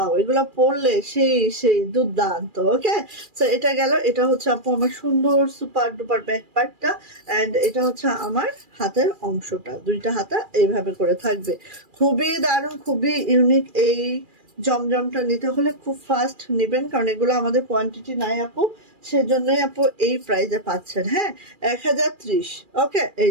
এগুলো পরলে সেই দুর্দান্ত। ওকে, সো এটা গেল, এটা হচ্ছে আপু আমার সুন্দর সুপার ডুপার ব্যাক পার্টটা, এন্ড এটা হচ্ছে আমার হাতের অংশটা, দুইটা হাতা এইভাবে করে থাকবে। খুবই দারুণ, খুবই ইউনিক। এই জমজমটা নিতে হলে খুব ফাস্ট নেবেন, কারণ এগুলো আমাদের কোয়ান্টিটি নাই আপু, সেজন্যই আপু এই প্রাইসে পাচ্ছেন, হ্যাঁ, 1030। ওকে, এই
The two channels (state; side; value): late; left; 2.4 ms